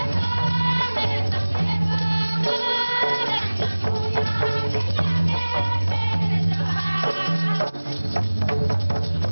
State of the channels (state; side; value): inverted; both; correlation -1.00